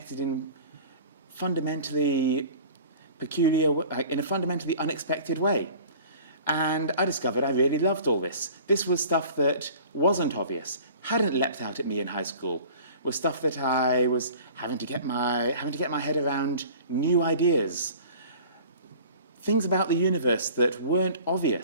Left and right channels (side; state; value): both; inverted; correlation -0.45